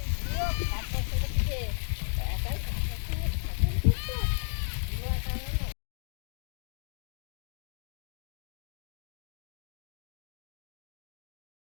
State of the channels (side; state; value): right; silent; 55 dB below the other